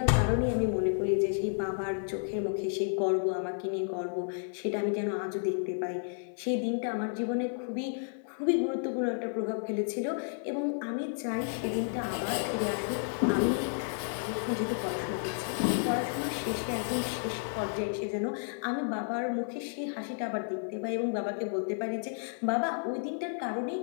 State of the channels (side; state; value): right; silent; digital silence